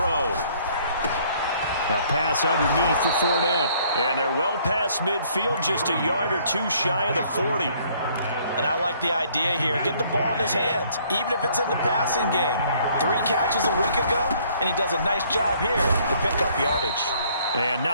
A pass underneath for Fournette. And they're well past midfield, just a yard or 2 shy of the 40. And I like the idea here. Get the ball in his hands, even if it's in the passing game. 3 catches a week ago, and he does a nice job here to pick up yardage. And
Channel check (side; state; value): both; inverted; correlation -0.62